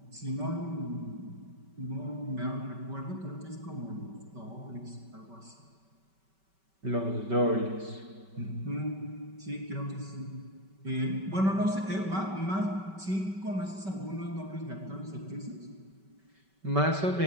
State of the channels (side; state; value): left; late; 5.2 ms